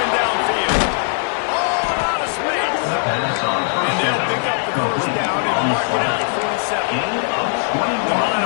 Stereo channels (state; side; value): silent; right; 66 dB below the other